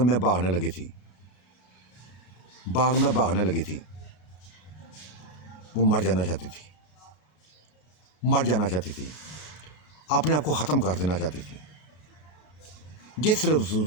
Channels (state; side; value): late; right; 33 ms